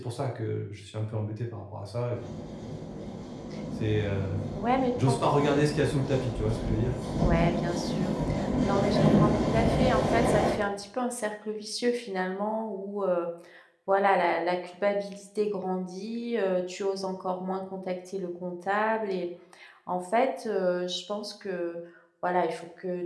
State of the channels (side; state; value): both; identical; correlation 1.00